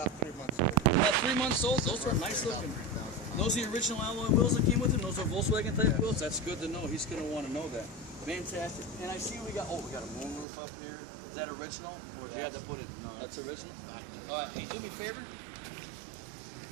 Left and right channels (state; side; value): drops out; left; at 10.5 s